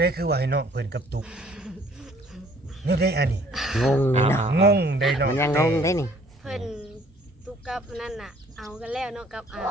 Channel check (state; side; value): normal; both; correlation 0.58